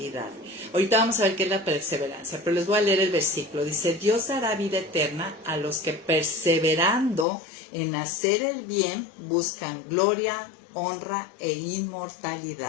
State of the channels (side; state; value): right; drops out; at 7.2 s